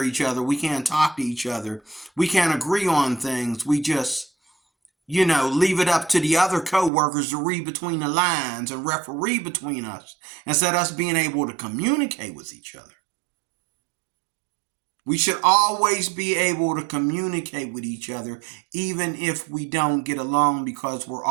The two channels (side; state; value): left; drops out; at 6.9 s